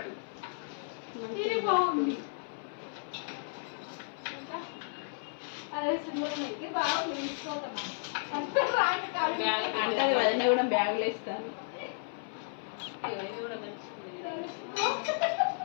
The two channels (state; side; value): silent; right; 56 dB below the other